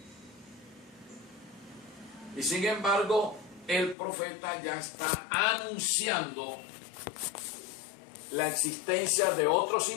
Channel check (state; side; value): drops out; right; at 4.0 s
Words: Y sin embargo, el profeta ya está anunciando la existencia de otros